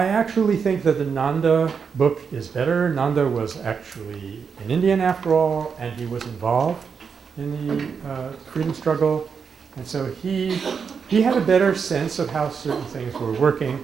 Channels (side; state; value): left; quieter; 6.1 dB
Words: actually think that the Nanda book is better. Nanda was actually an Indian after all, and he was involved in the freedom struggle. And so he had a better sense of how certain things were working.